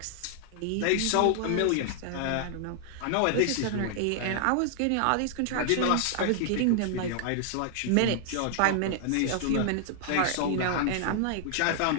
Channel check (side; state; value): both; different; correlation 0.00